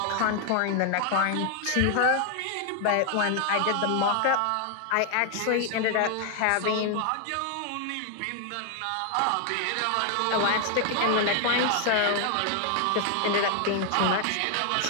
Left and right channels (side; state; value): both; different; correlation 0.00